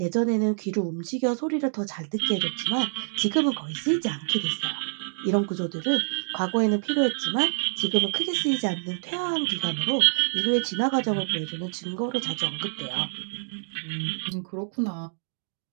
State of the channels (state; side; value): silent; left; digital silence